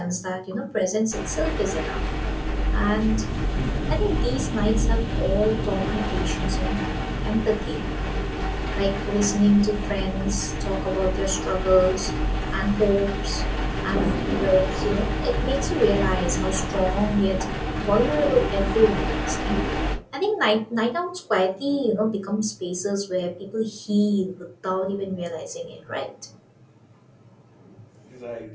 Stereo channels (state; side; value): identical; both; correlation 1.00